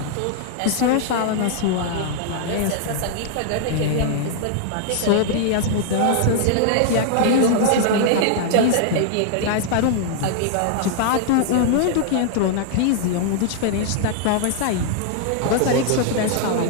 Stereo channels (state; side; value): different; both; correlation -0.01